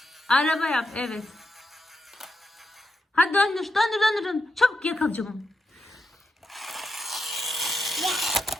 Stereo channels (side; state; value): both; normal; correlation 0.86